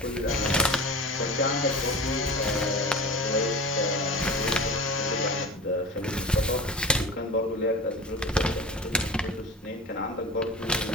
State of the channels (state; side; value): normal; both; correlation 0.34